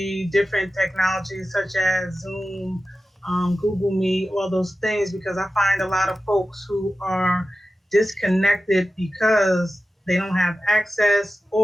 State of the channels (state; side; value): normal; both; correlation 0.94